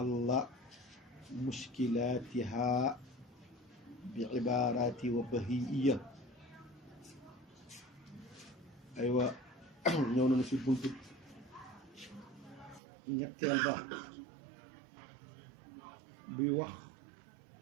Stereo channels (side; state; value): left; drops out; at 12.8 s